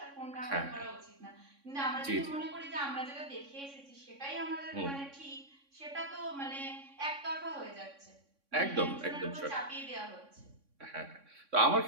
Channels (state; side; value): late; left; 3.6 ms